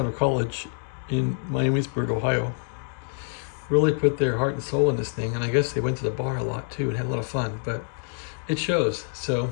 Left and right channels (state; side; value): silent; right; 56 dB below the other